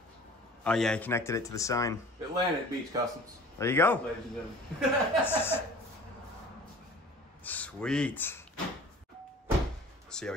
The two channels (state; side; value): normal; both; correlation 0.45